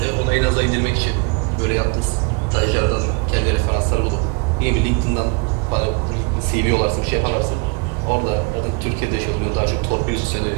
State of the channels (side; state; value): left; quieter; 31.8 dB